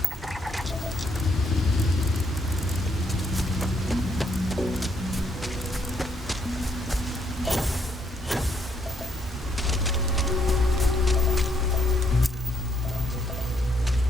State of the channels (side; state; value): both; normal; correlation 0.72